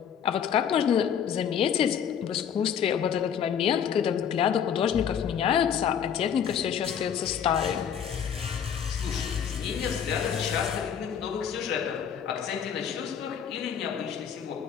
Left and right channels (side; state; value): right; quieter; 8.1 dB